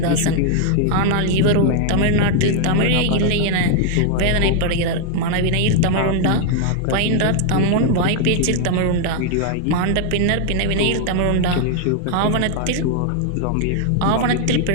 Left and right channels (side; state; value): both; different; correlation 0.00